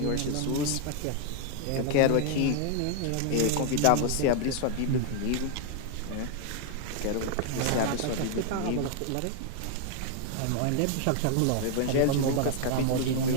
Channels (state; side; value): different; both; correlation 0.00